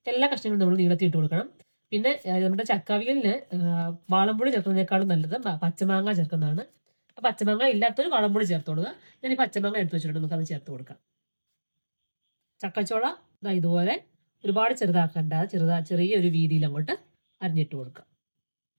എല്ലാ കഷ്ണങ്ങളും നമ്മൾ നീളത്തിൽ ഇട്ട് കൊടുക്കണം. പിന്നെ നമ്മുടെ ചക്കാവിയലിന് വാളംപുളി ചേർക്കുന്നതിനേക്കാളും നല്ലത് പച്ചമാങ്ങ ചേർക്കുന്നതാണ്. പച്ചമാങ്ങ ഇല്ലാത്തൊരു വാളംപുളി ചേർത്ത് കൊടുക്കുക. ഞാൻ ഈ പച്ചമാങ്ങ എടുത്ത് വെച്ചിട്ടുണ്ട്, നമുക്ക് അത് ചേർത്ത് കൊടുക്കാം. ചക്കച്ചോള ഇതുപോലെ ഒരുപാട് ചെറുതാക്കണ്ട, ചെറിയൊരു വീതിയിൽ അങ്ങോട്ട് അരിഞ്ഞിട്ട് കൊടുക്കുക.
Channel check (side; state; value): both; inverted; correlation -1.00